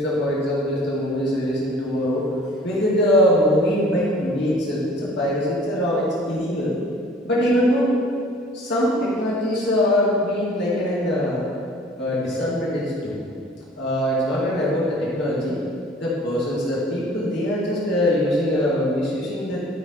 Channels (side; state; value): both; normal; correlation 0.50